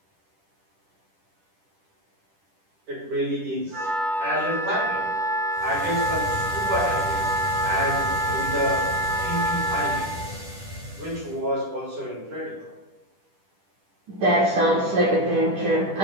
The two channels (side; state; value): left; late; 10 ms